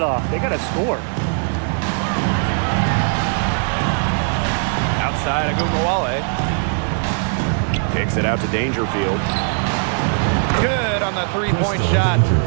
off. They got to score. Outside Agumawale. Kicks it out to Dangerfield. Good on the three-point shot.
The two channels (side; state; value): left; silent; 56 dB below the other